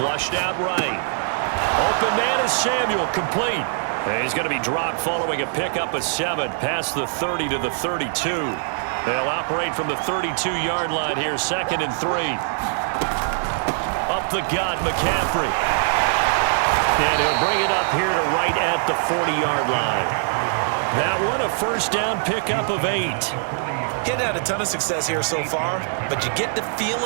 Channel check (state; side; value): silent; left; digital silence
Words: out right. Open man is Samuel, complete. And he's going to be dropped following a pickup of 7 past the 30 to the 32. They'll operate from the 32-yard line here, 2nd and 3. Up the gut, McCaffrey. And he'll bring it up here to right at the 40-yard line. That one, a 1st down pickup of 8. He's had a ton of success here so far, but you get the